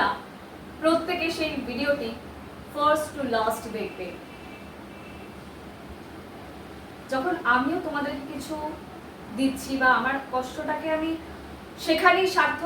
প্রত্যেকে সেই ভিডিওটি ফার্স্ট টু লাস্ট দেখবে। যখন আমিও তোমাদেরকে কিছু দিচ্ছি বা আমার কষ্টটাকে আমি সেখানেই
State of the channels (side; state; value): both; identical; correlation 1.00